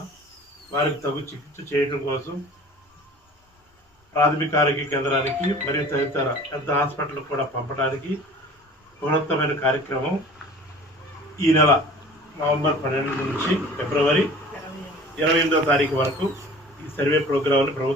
వారికి తగు చికిత్స చేయడం కోసం ప్రాథమిక ఆరోగ్య కేంద్రానికి మరియు తదితర పెద్ద హాస్పిటల్కి కూడా పంపడానికి బృహత్తమైన కార్యక్రమం ఈ నెల నవంబర్ 12 నుంచి ఫిబ్రవరి 28వ తారీఖు వరకు ఈ సర్వే ప్రోగ్రాంని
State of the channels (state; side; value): normal; both; correlation 0.44